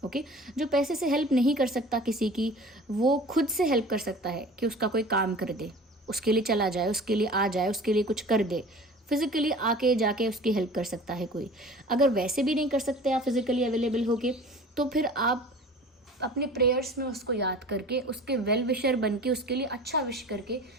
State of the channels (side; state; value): both; normal; correlation 0.42